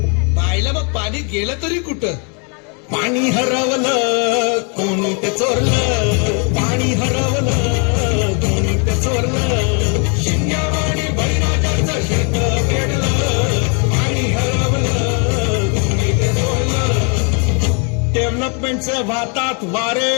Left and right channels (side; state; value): right; quieter; 37.1 dB